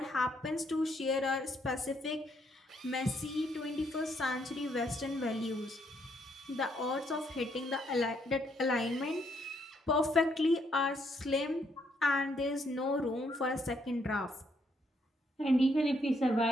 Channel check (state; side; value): normal; both; correlation 0.73